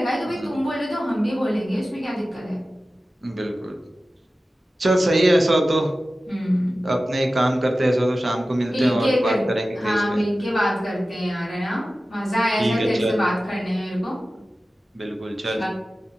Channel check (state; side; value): normal; both; correlation 0.95